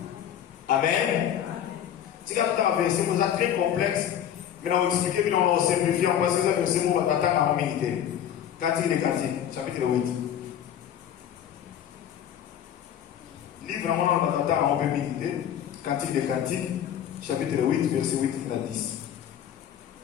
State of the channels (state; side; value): quieter; right; 9.9 dB